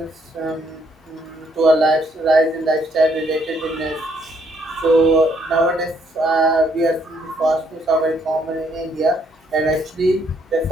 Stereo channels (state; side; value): normal; both; correlation 0.70